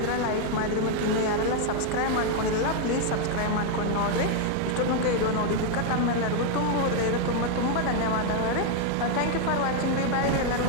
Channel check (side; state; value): both; different; correlation 0.00